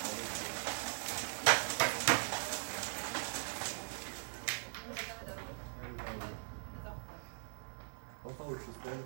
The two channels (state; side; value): silent; left; 51 dB below the other